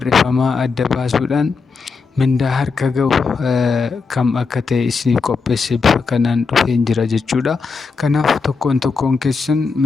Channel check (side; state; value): right; quieter; 4.8 dB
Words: adda baasuudhaan mindaa harka ga'u kam akka ta'e isiniif qopheesse bifa kanaan dhufeen jira jechuudha. Kanaaf tokkoon keessan